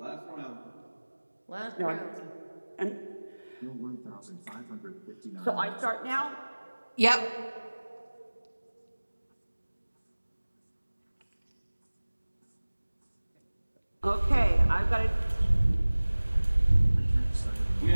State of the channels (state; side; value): inverted; both; correlation -1.00